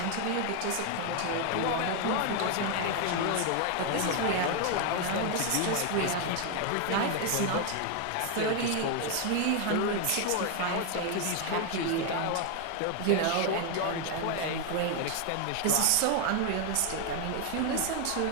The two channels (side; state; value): both; different; correlation 0.01